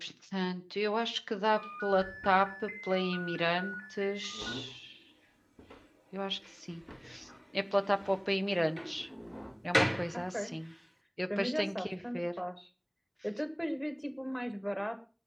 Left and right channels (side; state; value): both; identical; correlation 1.00